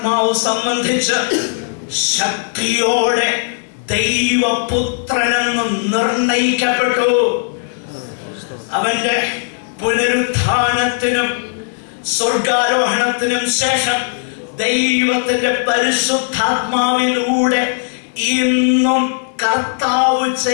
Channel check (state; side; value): silent; right; digital silence